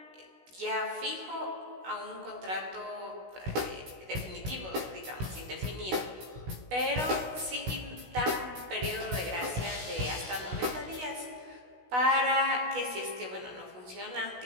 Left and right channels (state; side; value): late; left; 16 ms